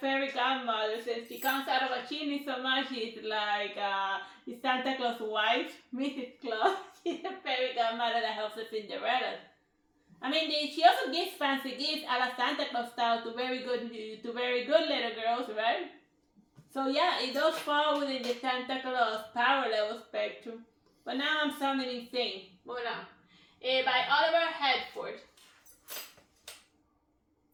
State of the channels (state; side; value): identical; both; correlation 1.00